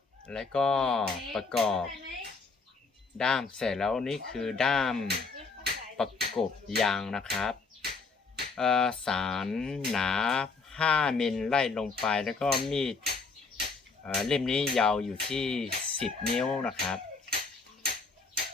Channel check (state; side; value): quieter; right; 4.3 dB